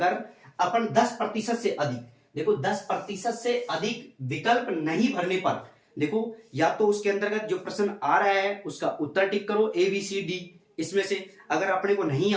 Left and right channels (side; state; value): both; identical; correlation 1.00